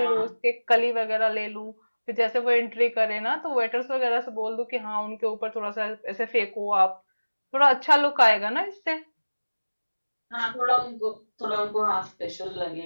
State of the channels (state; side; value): inverted; both; correlation -1.00